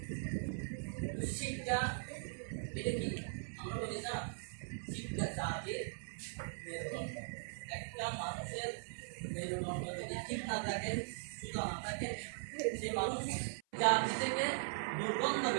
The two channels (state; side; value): silent; left; 51 dB below the other